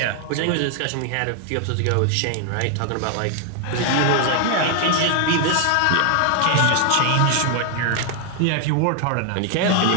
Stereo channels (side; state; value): both; different; correlation 0.00